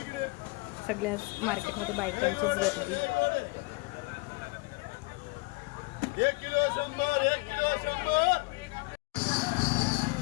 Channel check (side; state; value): right; quieter; 26.8 dB